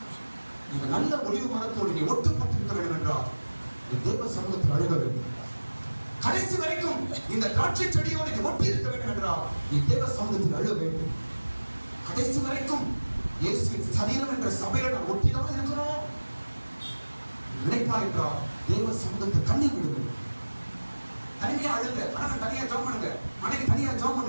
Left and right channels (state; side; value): inverted; both; correlation -1.00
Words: நீங்க நல்ல ஒளிவு மரத்தோடு நீ ஒட்டுப்பட்டிருக்க வேண்டும் என்றால் தேவ சமூகத்தில் அழுக வேண்டும். கடைசி வரைக்கும் இந்த திராட்சை செடியோடு நீ ஒட்டி இருக்க வேண்டும் என்றால் நீ தேவ சமூகத்தில் அழுக வேண்டும். கடைசி வரைக்கும் இயேசுவின் சரீரம் என்ற சபையில நான் ஒட்டிதான் இருக்கணும் நினைப்பார் என்றால் தேவ சமூகத்தில் கண்ணீர் விடுங்க. தனியா அழுங்க. கணவன் தனியா ஜெபம் பண்ணுங்க, மனைவி தனியா ஜெபம்